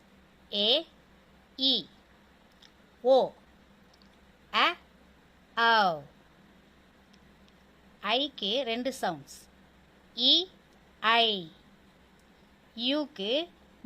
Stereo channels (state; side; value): identical; both; correlation 1.00